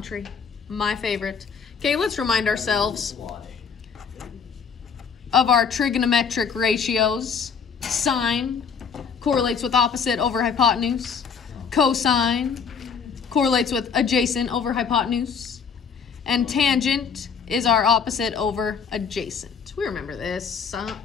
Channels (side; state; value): right; quieter; 6.2 dB